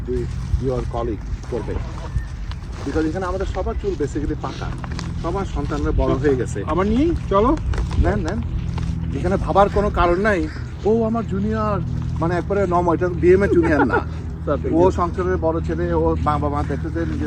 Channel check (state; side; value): identical; both; correlation 1.00